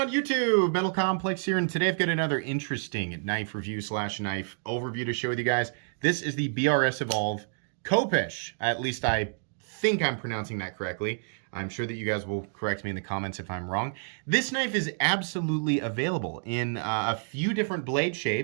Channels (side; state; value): left; silent; digital silence